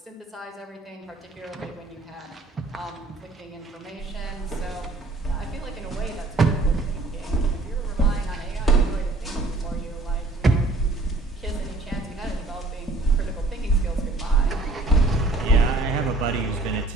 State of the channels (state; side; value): quieter; left; 3.1 dB